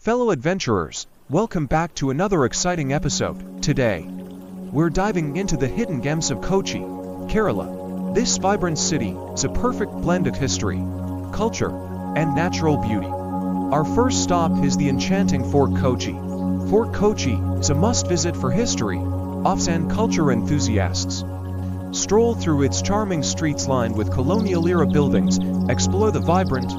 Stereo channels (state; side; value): identical; both; correlation 1.00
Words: adventurers, welcome back to another exciting episode. Today, we're diving into the hidden gems of Kochi, Kerala. This vibrant city is a perfect blend of history, culture, and natural beauty. Our first stop is the enchanting Fort Kochi. Fort Kochi is a must-visit for history, offs and culture enthusiasts. Stroll through its charming streets lined with colonial-era buildings, explore the vibrant